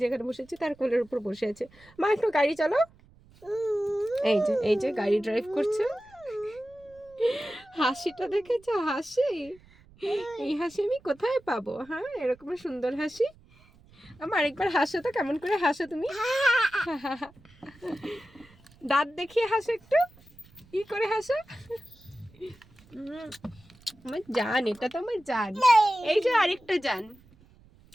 যেখানে বসেছি তার কোলের উপর বসে আছে। মা একটু গাড়ি চালাও। এই যে গাড়ি ড্রাইভ করছে। হাসিটা দেখেছো? হাসি, এই হাসি আমি কোথায় পাবো? হ্যাঁ, এরকম সুন্দর হাসি। আমার আরেকবার হাসো তো, কেমন করে হাসো তুমি? দাঁত দেখিয়ে হাসো একটু, কি করে হাসো? আমার জান, এটা তো আমার জান। এই যে আরেকটা জান।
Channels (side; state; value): right; noise; rumble, 27 dB below the sound